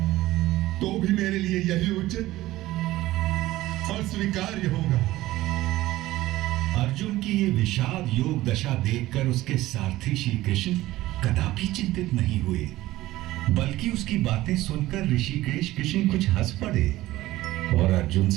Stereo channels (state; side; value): quieter; left; 16.6 dB